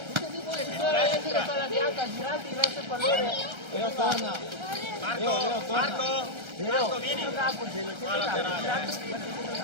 Adesso la palla bianca, girati verso il pallone. Leo torna. Marco, vieni. Qua laterale.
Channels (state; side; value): late; left; 1.3 ms